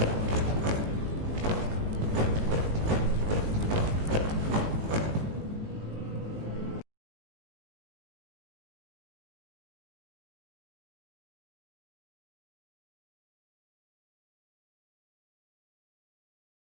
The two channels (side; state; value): left; late; 19 ms